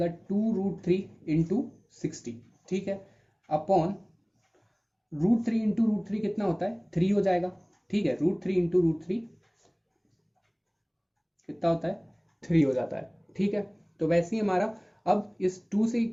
2√3 इंटू 60, ठीक है, अपॉन √3 इंटू √3 कितना होता है 3 हो जाएगा, ठीक है, √3 इंटू √3 कितना होता है 3 हो जाता है, ठीक है। तो वैसे ही हमारा अब इस 2 से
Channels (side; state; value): both; identical; correlation 1.00